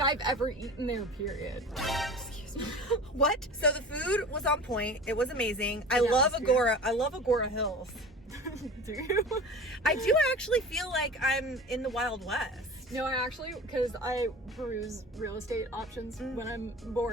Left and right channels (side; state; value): both; normal; correlation 0.37